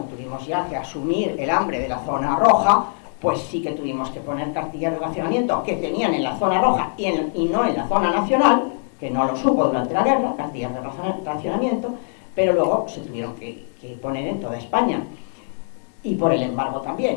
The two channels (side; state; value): right; silent; digital silence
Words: tuvimos ya que asumir el hambre de la zona roja, pues sí que tuvimos que poner cartillas de racionamiento que tenían en la zona roja y no en la zona nacional, que no lo supo durante la guerra, cartillas de racionamiento, pero luego se tuvieron que poner en toda España, y por el embargo